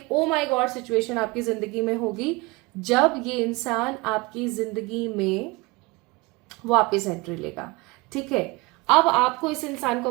oh my God situation आपकी जिंदगी में होगी जब ये इंसान आपकी जिंदगी में वापस एंट्री लेगा, ठीक है। अब आपको इस इंसान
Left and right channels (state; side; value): quieter; left; 24.2 dB